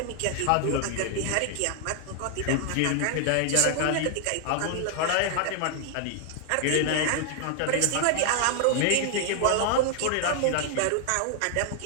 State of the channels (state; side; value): different; both; correlation 0.00